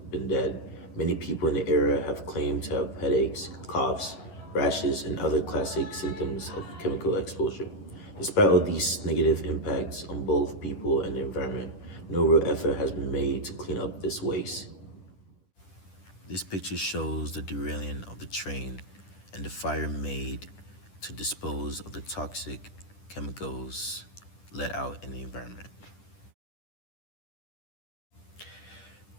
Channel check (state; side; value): late; right; 10 ms